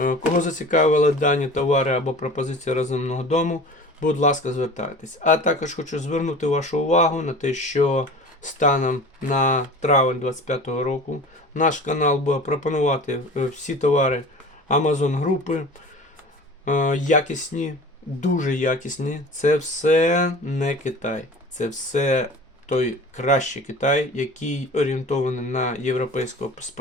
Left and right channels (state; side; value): normal; both; correlation 0.39